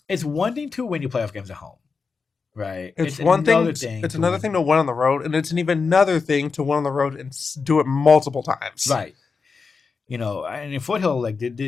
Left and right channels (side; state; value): right; quieter; 4.9 dB